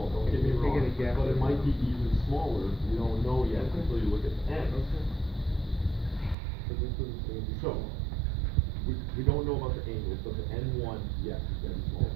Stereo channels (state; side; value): drops out; left; at 6.4 s